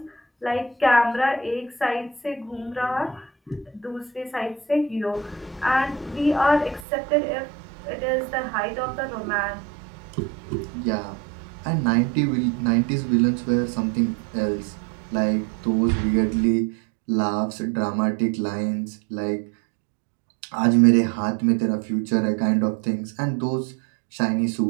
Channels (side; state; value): left; drops out; at 6.9 s